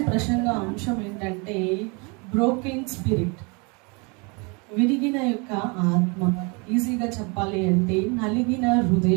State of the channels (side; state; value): left; quieter; 30.8 dB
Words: ప్రసంగ అంశం ఏంటంటే బ్రోకెన్ స్పిరిట్, విరిగిన యొక్క ఆత్మ. ఈజీగా చెప్పాలి అంటే నలిగిన